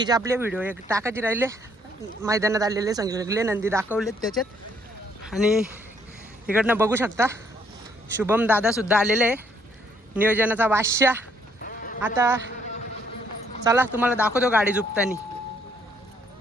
आपले व्हिडिओ एक टाकायचे राहिले. मैदानात आलेले सगळे नंदी दाखवलेत त्याच्यात. आणि इकडनं बघू शकता शुभम दादा सुद्धा आलेले आहे नियोजनाचा बादशाह. आता चला तुम्हाला दाखवतो गाडी झुपतानी.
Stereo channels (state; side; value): normal; both; correlation 0.68